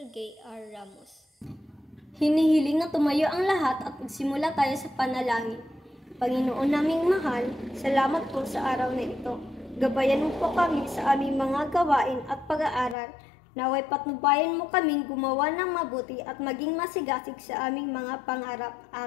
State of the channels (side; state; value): right; drops out; at 13.0 s